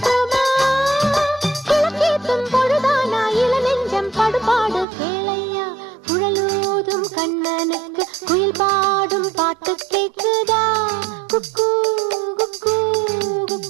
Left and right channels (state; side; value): drops out; left; at 4.9 s